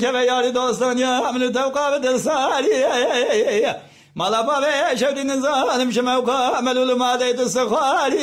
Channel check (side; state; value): both; identical; correlation 1.00